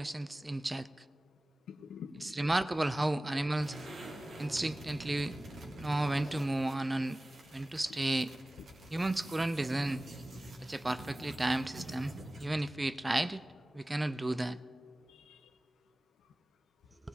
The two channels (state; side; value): normal; both; correlation 0.98